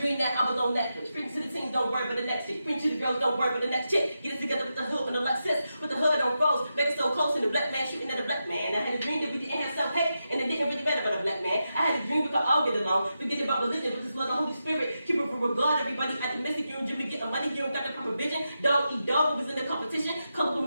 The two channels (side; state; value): both; inverted; correlation -0.88